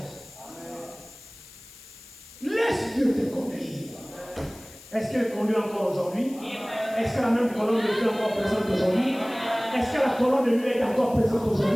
Laisse Dieu te conduire. Est-ce qu'elle conduit encore aujourd'hui? Est-ce que la même colonne de feu est encore présente aujourd'hui? Est-ce que la colonne de nuit est encore présente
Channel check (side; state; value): left; noise; hiss, 20 dB below the sound